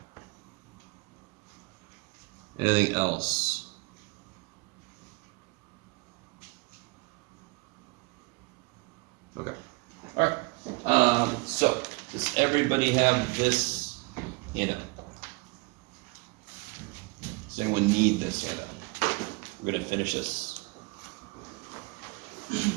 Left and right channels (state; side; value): quieter; left; 27.2 dB